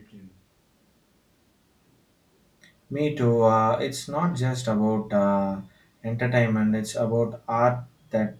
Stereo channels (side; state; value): both; identical; correlation 1.00